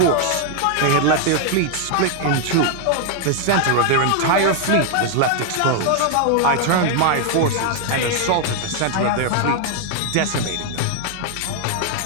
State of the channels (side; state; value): both; different; correlation 0.00